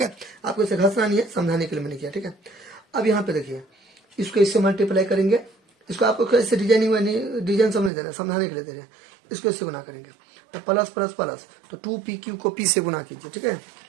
है। आपको इसे घसना नहीं है, समझाने के लिए मैंने किया, ठीक है। अब यहाँ पे देखिए, इसको इससे मल्टीप्लाई करेंगे, इसको आपको कैसे डिजाइनिंग में डिजाइन समझ दे रहे हैं, समझाने के लिए दे रहे हैं। इसको इससे गुना करेंगे तो प्लस प्लस प्लस, तो 2pq को p से गुना कीजिए, ठीक है।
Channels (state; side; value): drops out; left; at 7.9 s